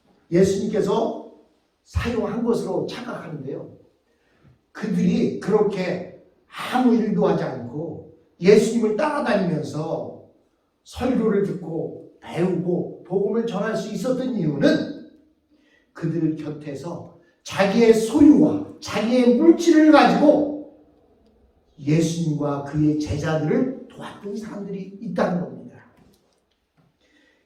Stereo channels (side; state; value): both; identical; correlation 1.00